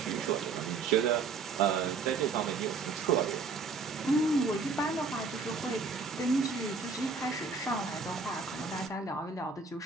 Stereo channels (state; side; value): quieter; left; 4.5 dB